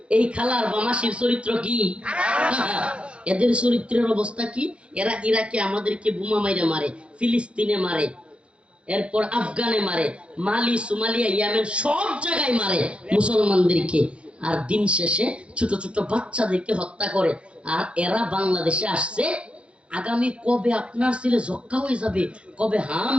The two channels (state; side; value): late; left; 0.059 ms